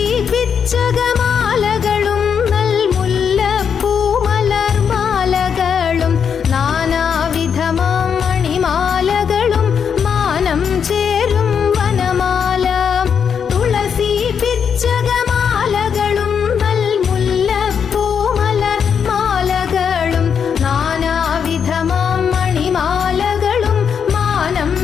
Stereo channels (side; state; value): right; quieter; 7.2 dB